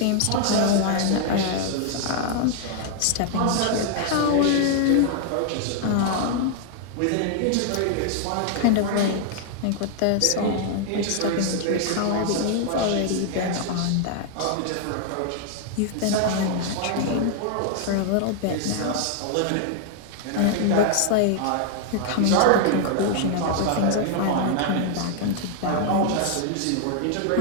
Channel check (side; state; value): both; different; correlation 0.00